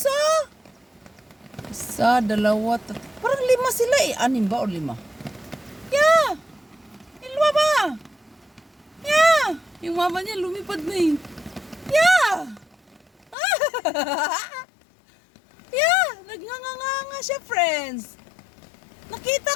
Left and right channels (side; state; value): right; drops out; at 13.4 s